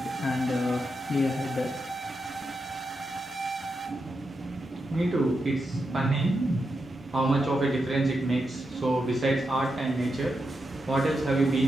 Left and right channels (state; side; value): normal; both; correlation 0.86